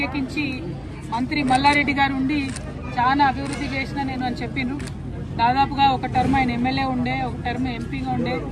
మంత్రి మల్లారెడ్డి గారు ఉండి చాలా అభివృద్ధి చేసిన నేను అని చెప్పిండ్రు. దాదాపుగా ఒక టర్మ్ ఆయన ఎమ్మెల్యే ఉండే, ఒక టర్మ్ ఎంపీగా ఉండే,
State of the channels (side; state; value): both; identical; correlation 1.00